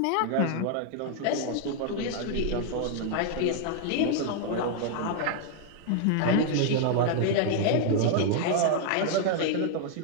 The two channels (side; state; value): both; different; correlation 0.00